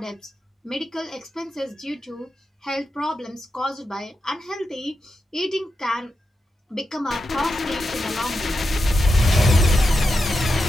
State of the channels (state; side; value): normal; both; correlation 0.88